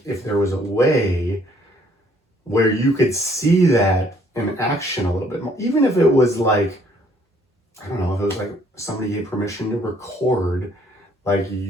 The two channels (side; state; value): both; normal; correlation 0.64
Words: if there was a way where you could see that in action a little bit more, even if it was like, I don't know, if it was like somebody gave permission to record like